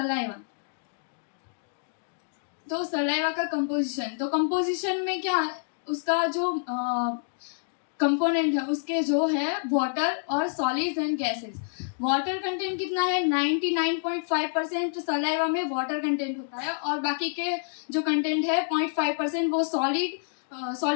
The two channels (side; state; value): right; silent; digital silence